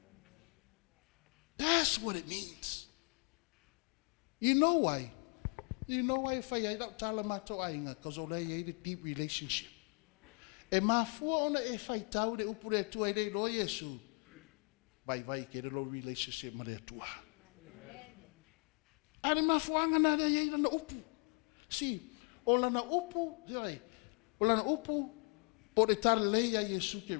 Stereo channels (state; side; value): quieter; right; 36.0 dB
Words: That's what it means. You know why? You know why fai ai da tala mato ainga, because o lei a deep relationship. E mafua ona e fai tau le upure tua i le Lord Iesu. Vai ke lo relationship ma le tua. Ari mafuanga na le i na upu. Si, o na upu, sai. O na upu po le tala le a Iesu ke